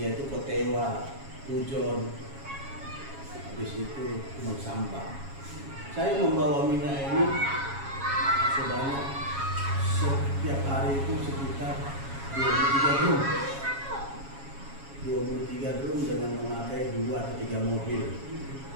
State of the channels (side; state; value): left; late; 7.2 ms